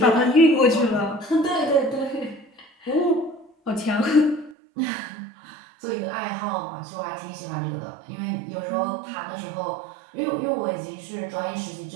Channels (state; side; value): drops out; left; at 4.5 s